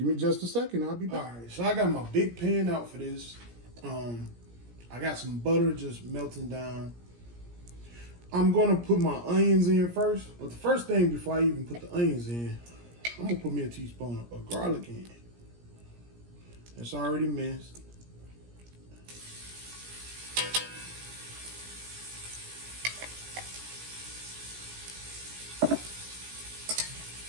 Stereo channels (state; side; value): late; left; 17 ms